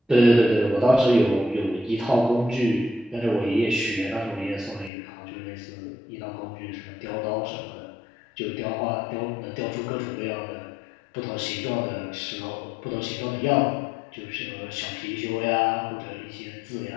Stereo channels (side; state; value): right; drops out; at 4.9 s